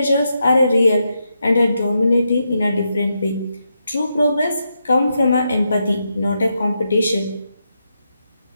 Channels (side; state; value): both; inverted; correlation -0.84